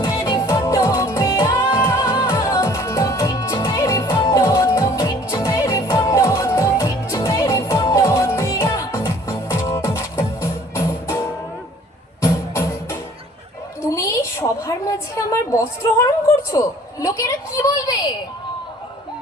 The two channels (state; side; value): normal; both; correlation 0.53